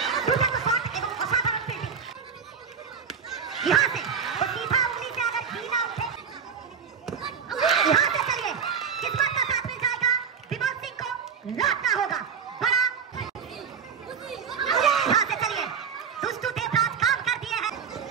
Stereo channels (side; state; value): left; quieter; 6.7 dB